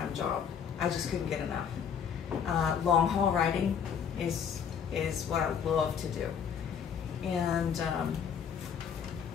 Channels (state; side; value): quieter; right; 7.5 dB